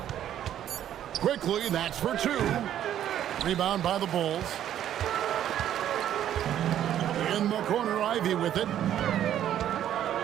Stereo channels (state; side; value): quieter; left; 11.0 dB